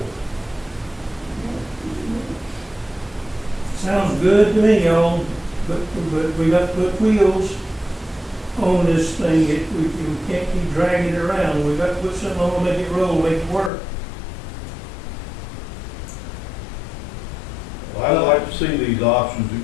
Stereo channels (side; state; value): right; drops out; at 13.7 s